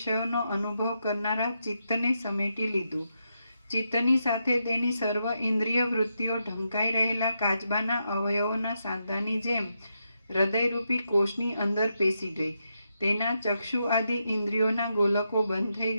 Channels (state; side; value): inverted; both; correlation -0.83